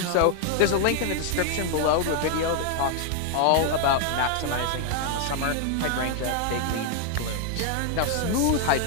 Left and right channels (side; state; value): both; different; correlation 0.00